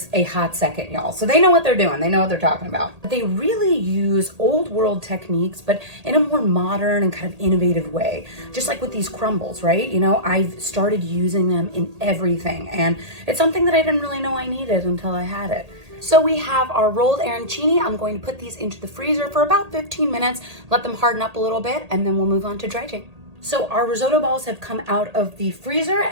a hot second, y'all. So they know what they're doing. They know what they're talking about. They really use old world techniques, but in a more modern and kind of innovative way. Just like with these crumbles, right? You know, I've started using them in everything, and it's something that I didn't really know I needed until I had it. So we have our rolled arancini. I'm going to put these into the freezer for about 15 minutes, let them harden up a little bit, and then we'll move on to dredging. So our risotto balls have come out of the freezer,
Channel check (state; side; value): late; left; 1.8 ms